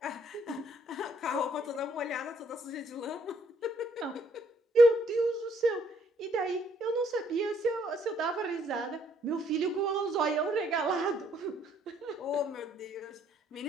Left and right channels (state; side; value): normal; both; correlation 0.66